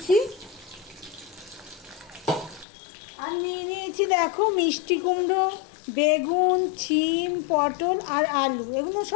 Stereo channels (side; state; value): right; drops out; at 2.7 s